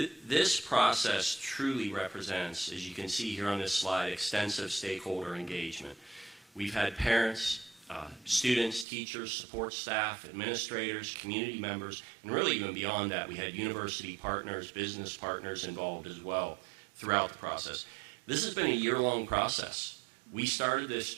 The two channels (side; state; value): left; drops out; at 8.8 s